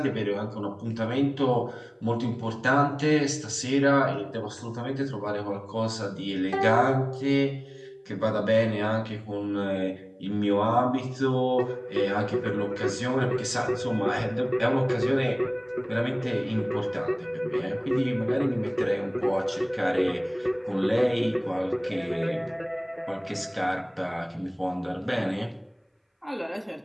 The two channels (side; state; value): both; identical; correlation 1.00